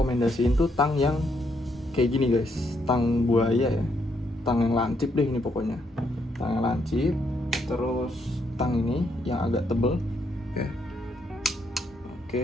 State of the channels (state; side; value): normal; both; correlation 0.75